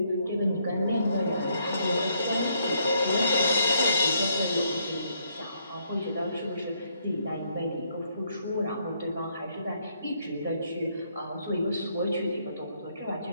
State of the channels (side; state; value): both; inverted; correlation -0.72